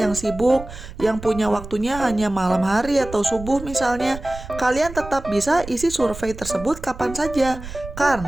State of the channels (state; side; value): noise; right; rumble, 13 dB below the sound